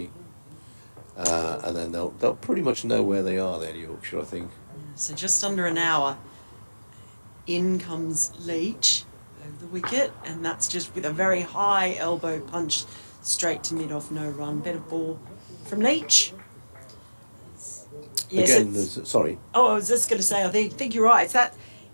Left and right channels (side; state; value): both; inverted; correlation -1.00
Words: and then they'll pretty much know where they are there in Yorkshire, I think. So just under an hour, in comes Leach over the wicket, and that's just with a very high elbow punch straight to mid-off, no run. Better ball from Leach. Yes, Again, it's- sorry. Oh, I was just going to say, I think you're right.